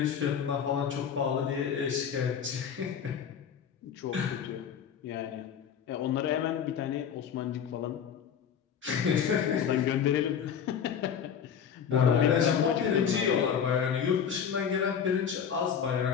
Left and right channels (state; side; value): quieter; right; 7.8 dB